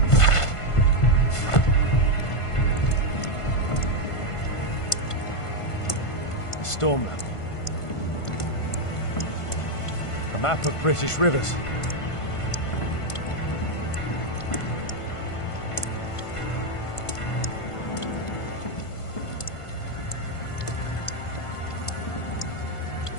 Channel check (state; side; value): late; right; 1.5 ms